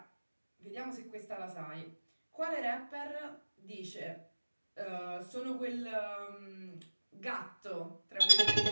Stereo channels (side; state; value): both; inverted; correlation -1.00